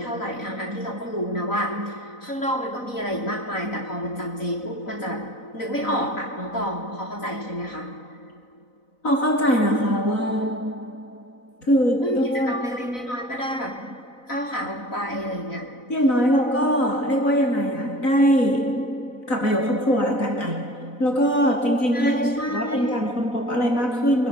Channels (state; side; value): late; right; 4.0 ms